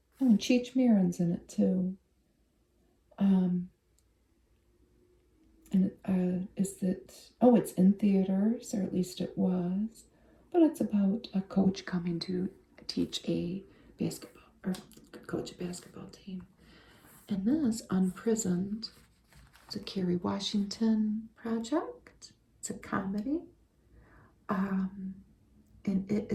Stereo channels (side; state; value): both; identical; correlation 1.00